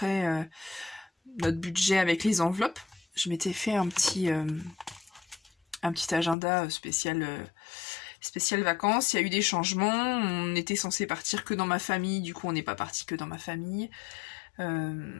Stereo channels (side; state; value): right; drops out; at 6.4 s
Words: notre budget avec les enveloppes. Je m'étais fait un petit agenda spécial vacances. Il y a eu des changements, on était censé partir que dans ma famille, du coup on n'est pas parti que dans ma famille.